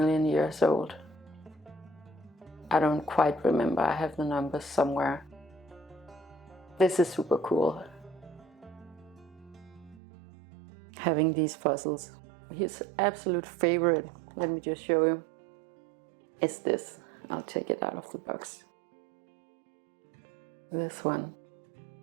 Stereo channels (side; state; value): left; drops out; at 10.0 s